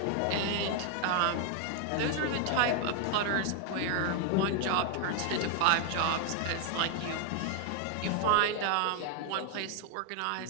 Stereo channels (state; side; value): different; both; correlation 0.00